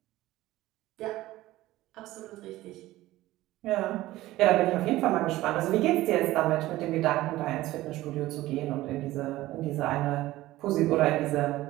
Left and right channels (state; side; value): quieter; left; 16.7 dB